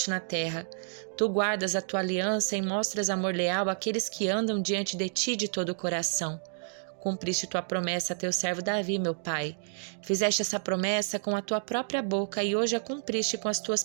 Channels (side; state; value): left; silent; digital silence